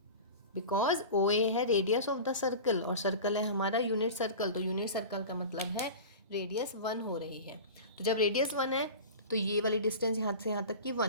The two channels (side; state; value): both; inverted; correlation -0.33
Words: बिकॉज ओ ए है रेडियस ऑफ द सर्कल, और सर्कल है हमारा यूनिट सर्कल। तो यूनिट सर्कल का मतलब है रेडियस 1 हो रही है। तो जब रेडियस 1 है तो ये वाली डिस्टेंस यहाँ से यहाँ तक की